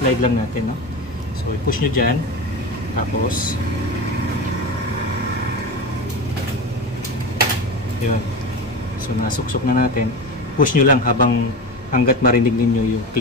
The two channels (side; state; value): both; normal; correlation 0.25